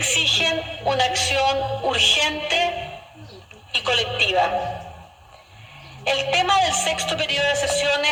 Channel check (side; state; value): both; identical; correlation 1.00